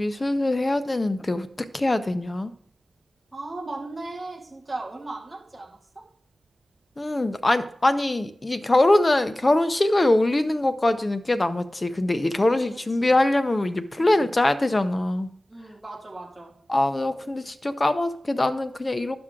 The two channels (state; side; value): normal; both; correlation 0.98